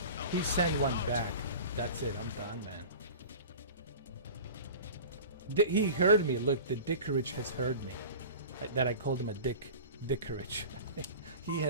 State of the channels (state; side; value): inverted; both; correlation -0.36